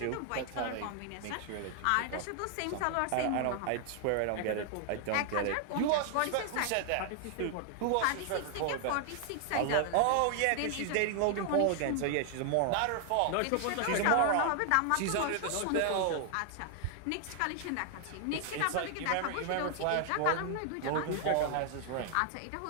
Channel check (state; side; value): different; both; correlation 0.00